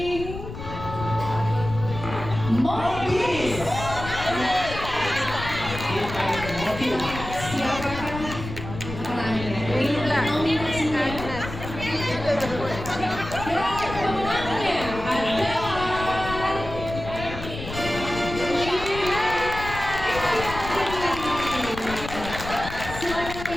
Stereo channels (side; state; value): left; noise; rumble, 9 dB below the sound